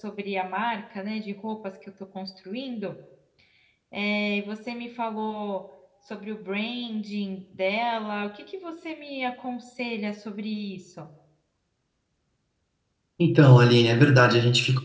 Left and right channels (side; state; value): both; identical; correlation 1.00